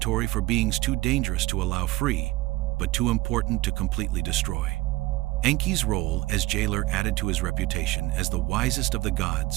for beings too dangerous to allow free, but too important to completely destroy. Enki's role as jailer added to his reputation as the wisest of the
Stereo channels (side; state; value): left; quieter; 19.8 dB